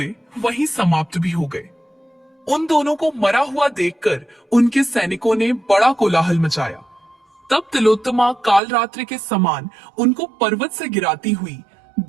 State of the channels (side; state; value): left; drops out; at 8.6 s